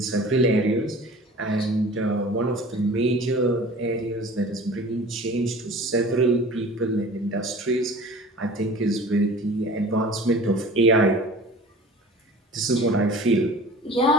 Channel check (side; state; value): both; normal; correlation 0.42